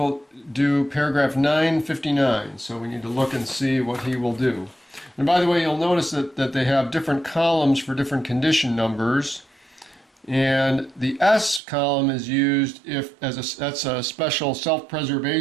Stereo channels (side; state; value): left; drops out; at 11.6 s